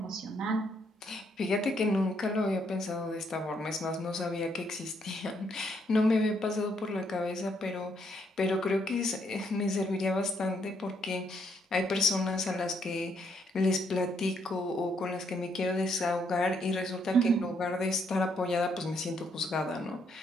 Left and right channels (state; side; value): normal; both; correlation 0.73